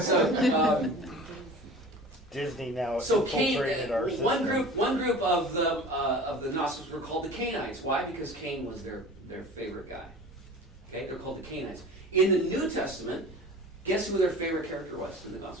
Disney now so Cain, infiltrated our system. one group of the Gnostics were called the Cainites. Why? Because Cain was their favorite guy. Okay, they're called the Cainites. In the New Testament, guess who their favorite character was in the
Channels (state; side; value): normal; both; correlation 0.39